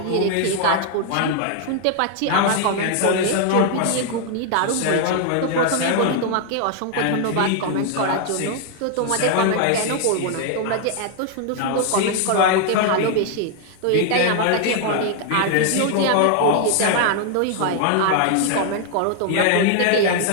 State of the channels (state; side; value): different; both; correlation 0.00